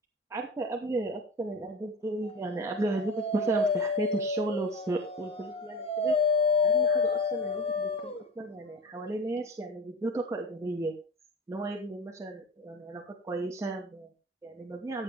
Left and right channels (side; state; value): both; normal; correlation 0.33